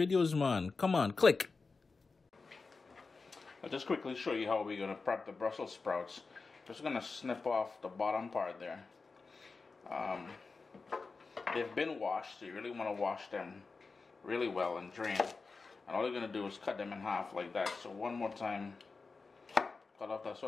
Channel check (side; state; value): right; quieter; 4.2 dB